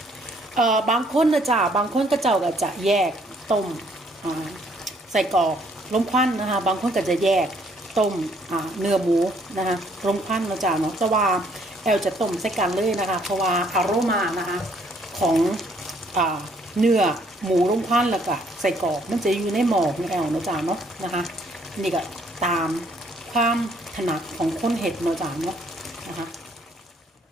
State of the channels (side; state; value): both; normal; correlation 0.65